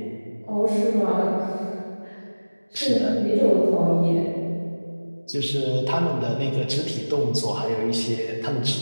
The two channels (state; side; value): inverted; both; correlation -1.00